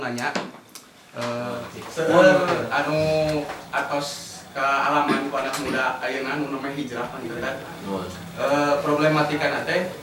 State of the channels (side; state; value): both; identical; correlation 1.00